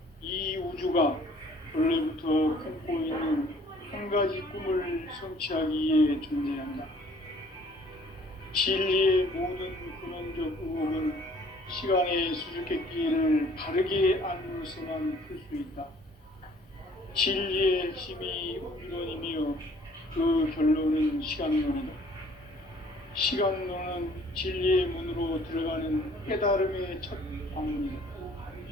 이 우주가 원래부터 품고 있는 한 가지 꿈을 성취하기 위해 존재한다. 진리의 모든 근원적 의혹은 시간의 수수께끼를 바르게 알므로서만 풀 수 있다. 진리의 핵심이 우주론이며 그 결론은 시간론이다. 시간론은 진리의 문으로 들어가는 깨달음의 첫 방문이다.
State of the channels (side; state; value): both; normal; correlation 0.56